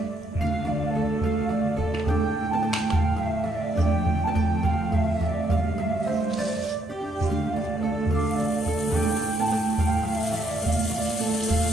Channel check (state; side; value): normal; both; correlation 0.74